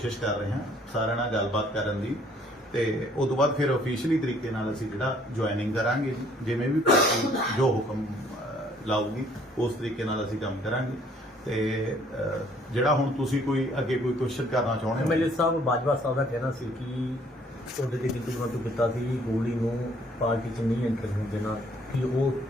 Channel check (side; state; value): both; normal; correlation 0.61